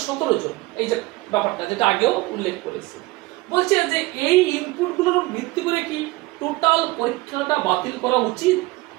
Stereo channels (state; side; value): quieter; left; 21.0 dB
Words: 17 জন। এই যে ব্যাপারটা যেটা আগেও উল্লেখ করেছে, বলছে যে এই ইনপুটগুলোর ভিত্তি করে কি টোটাল পরীক্ষাটা বাতিল করা উচিত।